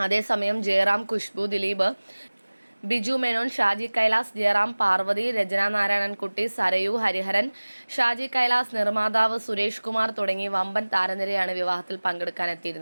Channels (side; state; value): both; inverted; correlation -1.00